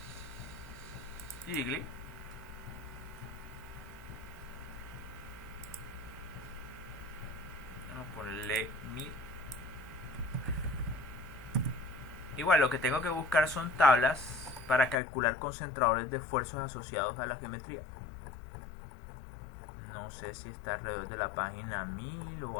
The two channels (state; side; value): drops out; right; at 15.0 s